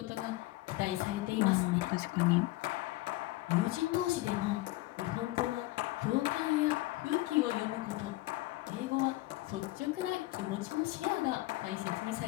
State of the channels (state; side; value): quieter; right; 18.8 dB